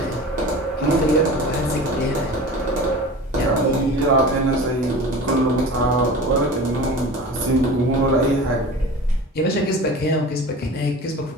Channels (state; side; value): normal; both; correlation 0.36